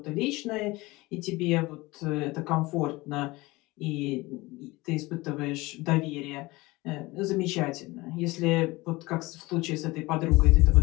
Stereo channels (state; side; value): quieter; right; 21.4 dB